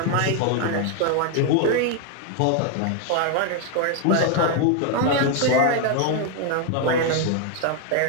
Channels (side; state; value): both; different; correlation 0.00